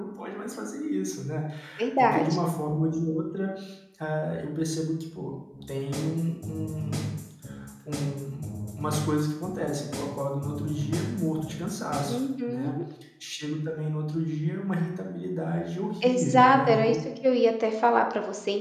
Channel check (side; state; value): both; identical; correlation 1.00